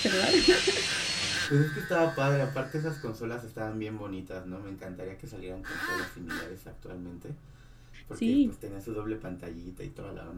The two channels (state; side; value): identical; both; correlation 1.00